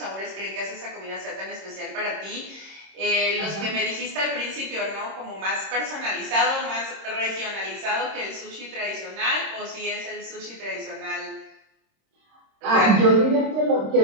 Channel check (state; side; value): late; left; 26 ms